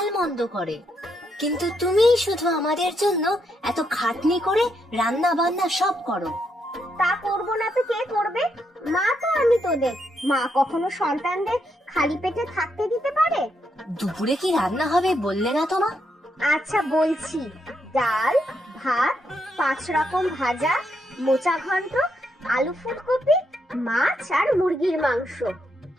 করে, কিন্তু তুমি শুধু আমাদের জন্য এত খাটনি করে রান্না বান্না সব করো। তা করবো না তো কে করবে? মা তো আমি তোদের। মা কখনো সন্তানদের খালি পেটে থাকতে দিতে পারে? দুপুরে কি রান্না হবে বললে না তো মা? আচ্ছা বলছি, ডাল, ভাত, 5 রকম ভাজা, মোচা ঘন্ট, আলু ফুলকপি, মাছ আর মুরগির মাংস।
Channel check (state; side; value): normal; both; correlation 0.79